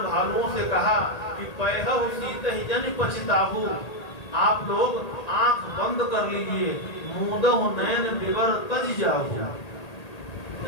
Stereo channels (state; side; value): late; right; 1.8 ms